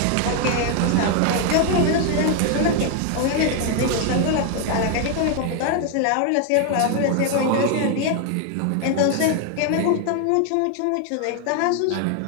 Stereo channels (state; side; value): different; both; correlation 0.00